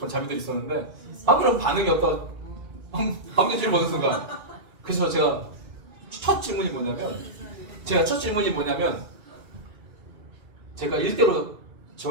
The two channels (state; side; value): late; left; 2.3 ms